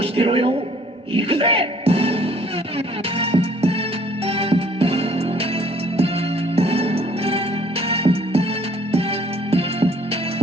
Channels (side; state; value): both; normal; correlation 0.59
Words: してろよ。行くぜ。